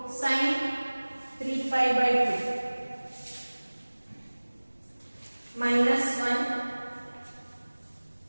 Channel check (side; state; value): both; inverted; correlation -1.00